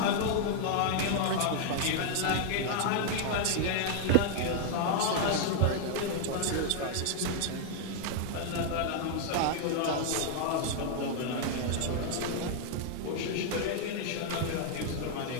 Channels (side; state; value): both; different; correlation 0.00